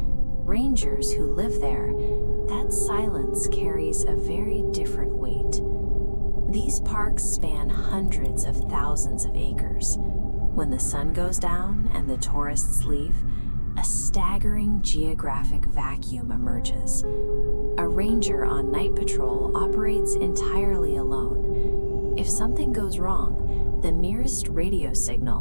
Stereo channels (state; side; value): inverted; both; correlation -1.00